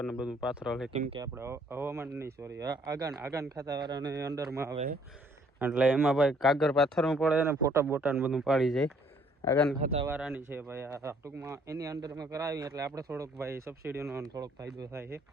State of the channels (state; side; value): normal; both; correlation 0.63